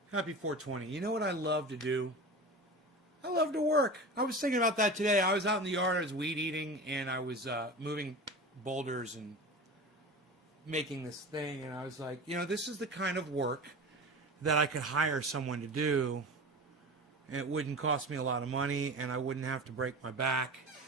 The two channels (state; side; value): normal; both; correlation 0.31